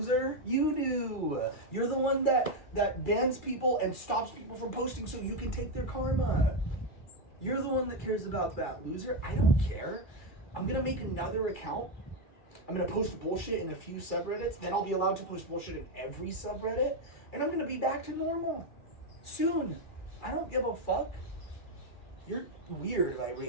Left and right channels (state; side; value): late; right; 2.4 ms